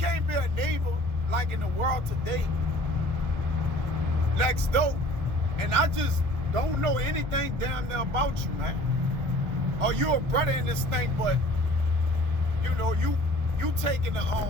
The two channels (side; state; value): left; late; 1.1 ms